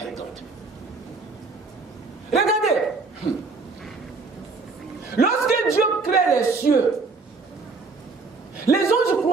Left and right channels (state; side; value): quieter; left; 4.1 dB